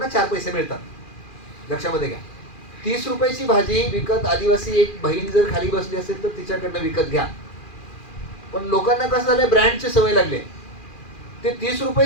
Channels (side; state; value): right; late; 2.4 ms